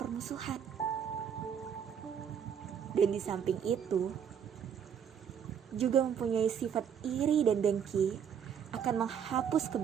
Dan di samping itu, juga mempunyai sifat iri dan dengki akan menghapus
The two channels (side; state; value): left; quieter; 8.0 dB